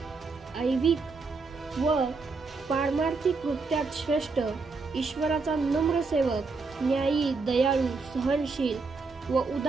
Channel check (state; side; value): quieter; left; 4.2 dB